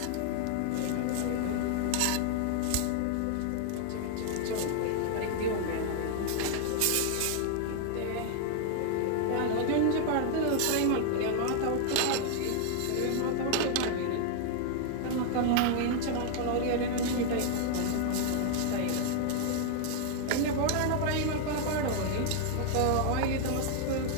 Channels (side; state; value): both; different; correlation 0.00